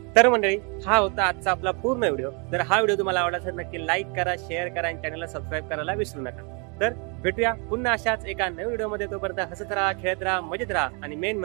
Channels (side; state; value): left; quieter; 34.2 dB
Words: तर मंडळी, हा होता आजचा आपला पूर्ण व्हिडिओ। जर हा व्हिडिओ तुम्हाला आवडला असेल नक्की लाईक करा, शेअर करा आणि चॅनलला सबस्क्राईब करायला विसरू नका। तर भेटूया पुन्हा अशाच एका नवीन व्हिडिओ मध्ये। तोपर्यंत हसत राहा, खेळत राहा, मजेत राहा आणि मेन